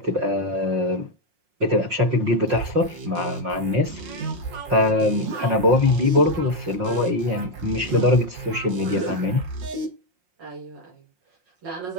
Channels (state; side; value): late; left; 5.6 ms